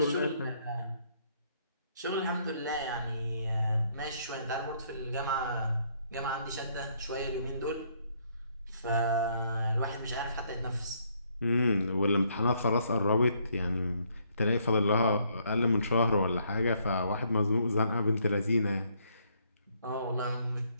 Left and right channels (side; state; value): both; inverted; correlation -0.69